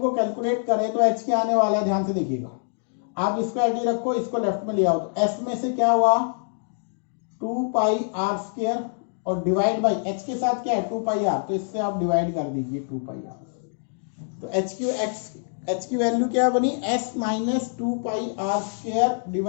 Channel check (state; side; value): silent; right; digital silence